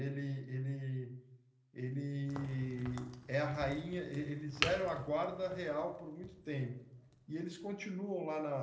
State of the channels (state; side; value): identical; both; correlation 1.00